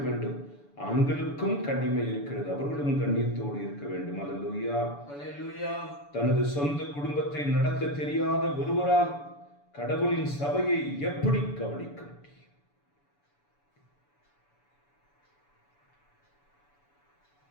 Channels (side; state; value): right; late; 7.0 ms